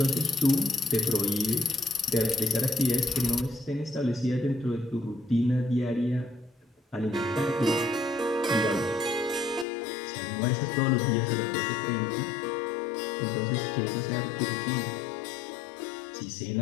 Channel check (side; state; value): right; drops out; at 9.7 s